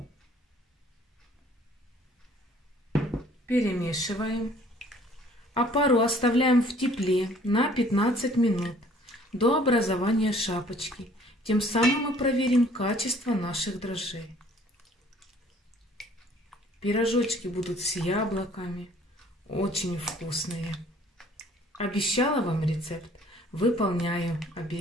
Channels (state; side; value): normal; both; correlation 0.56